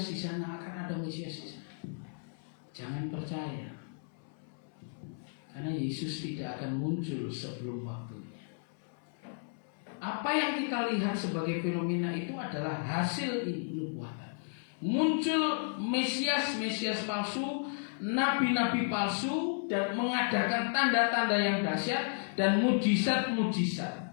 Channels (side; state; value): right; silent; 55 dB below the other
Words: di sana, akan ada Mesias di sana. Jangan percaya, karena Yesus tidak akan muncul sebelum waktunya. Apa yang kita lihat sebagai fenomena itu adalah hasil nubuatan. Muncul Mesias palsu, nabi-nabi palsu, dan mengadakan tanda-tanda yang dahsyat dan mujizat-mujizat.